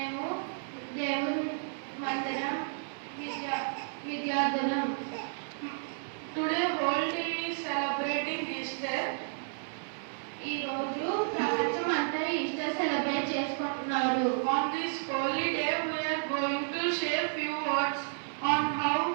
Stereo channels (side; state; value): left; silent; 57 dB below the other